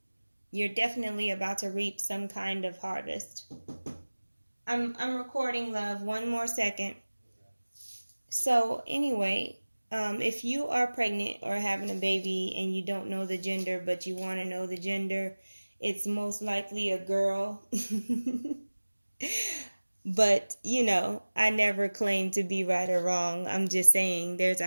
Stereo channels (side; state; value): both; inverted; correlation -1.00